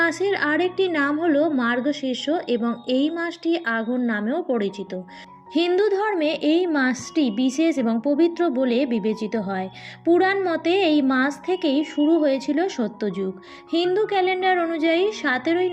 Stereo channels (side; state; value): both; identical; correlation 1.00